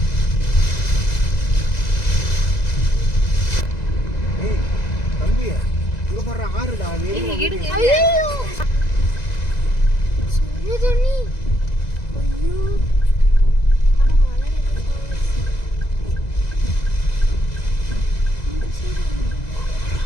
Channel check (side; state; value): right; late; 2.0 ms